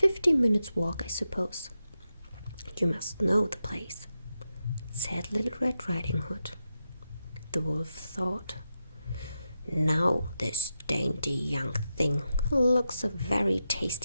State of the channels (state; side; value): inverted; both; correlation -0.88